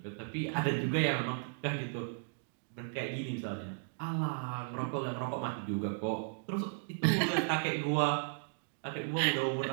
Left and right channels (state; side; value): silent; left; digital silence